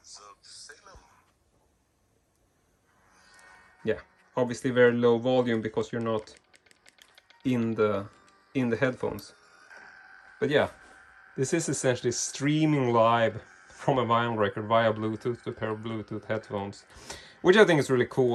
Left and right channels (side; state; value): both; identical; correlation 1.00